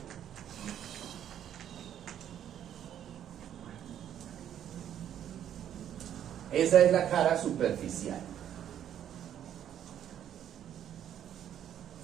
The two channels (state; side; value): quieter; left; 10.2 dB